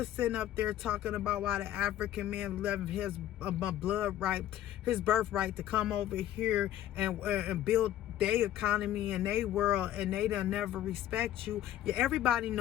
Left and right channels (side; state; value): right; quieter; 12.6 dB